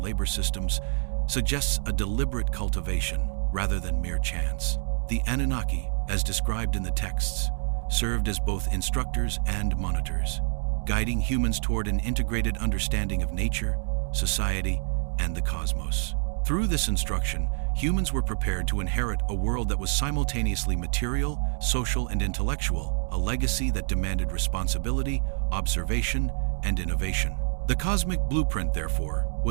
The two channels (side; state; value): left; silent; 60 dB below the other